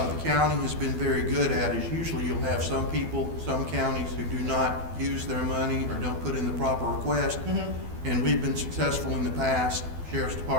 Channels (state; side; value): late; left; 12 ms